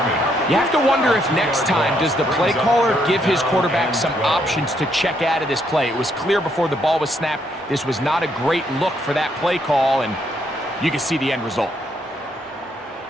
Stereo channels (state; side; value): normal; both; correlation 0.73